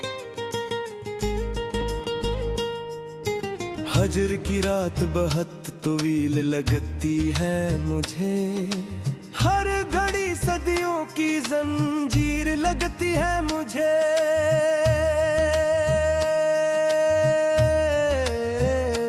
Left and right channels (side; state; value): both; identical; correlation 1.00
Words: फजर की रात बहुत तवील लगती है मुझे, हर घड़ी सदियों की जंजीर लगती है मुझे।